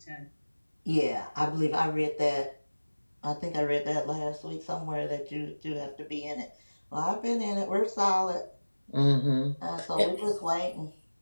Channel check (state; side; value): inverted; both; correlation -1.00